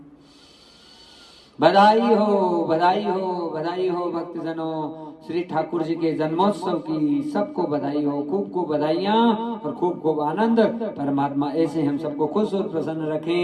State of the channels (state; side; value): identical; both; correlation 1.00